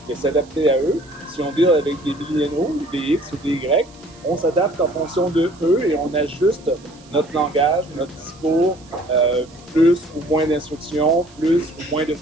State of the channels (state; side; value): noise; right; hiss, 26 dB below the sound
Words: de s'adapter à eux. Si on deal avec des milléniaux, des X ou des Y, on s'adapte en fonction de eux et on ajuste notre langage, notre discours, plus ou moins d'instructions, plus ou moins de